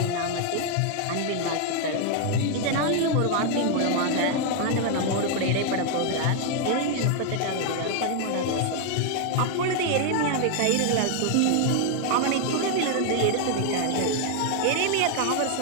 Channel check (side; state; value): both; different; correlation 0.00